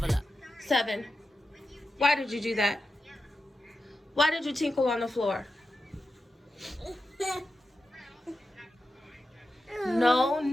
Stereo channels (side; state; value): both; normal; correlation 0.90